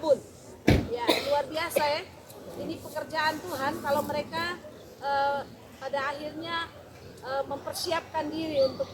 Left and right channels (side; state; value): both; identical; correlation 1.00